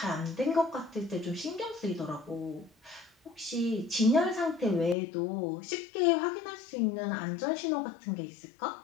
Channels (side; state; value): right; drops out; at 5.0 s